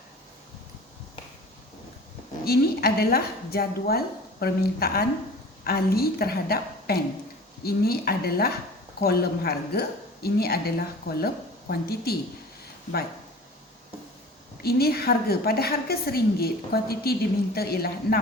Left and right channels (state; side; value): normal; both; correlation 0.41